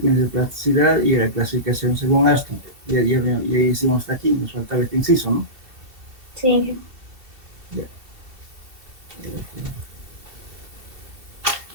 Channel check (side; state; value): left; late; 2.7 ms